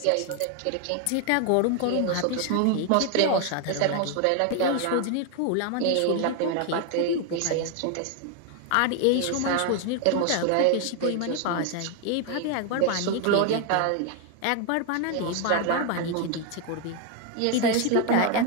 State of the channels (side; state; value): both; different; correlation 0.01